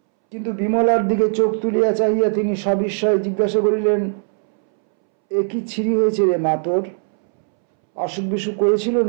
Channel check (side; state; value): left; silent; 66 dB below the other